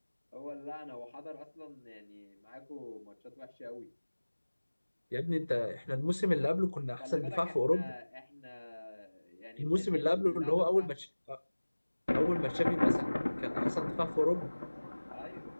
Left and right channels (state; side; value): inverted; both; correlation -1.00